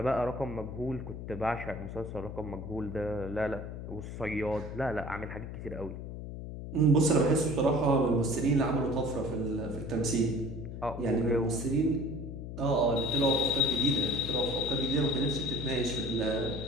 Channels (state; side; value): noise; left; hum, 8 dB below the sound